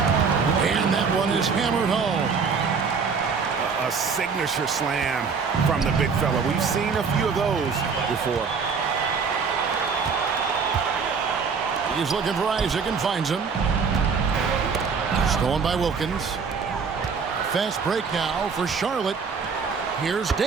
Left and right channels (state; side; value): quieter; left; 5.6 dB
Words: And that one is hammered home. A signature slam from the big fella. We've seen a few of those before. He's looking for Isaac and finds him. Stolen by Wilkins. Fast break now for Charlotte. Here's